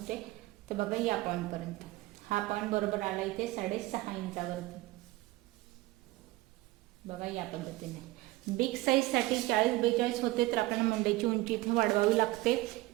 तर बघा या पॉईंटपर्यंत हा पॉईंट बरोबर आला इथे 6.5 इंचावरती। बघा या पद्धतीने बिग साईजसाठी 40-42 होते तर आपल्याला मुंड्याची उंची इथे वाढवावी लागते।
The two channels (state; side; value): quieter; left; 19.2 dB